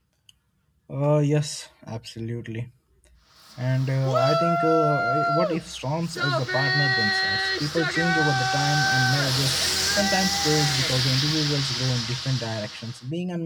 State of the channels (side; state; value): both; identical; correlation 1.00